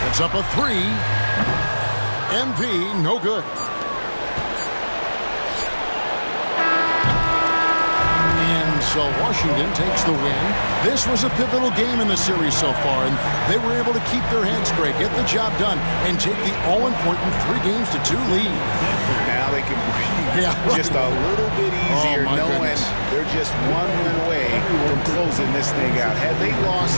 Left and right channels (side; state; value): both; inverted; correlation -1.00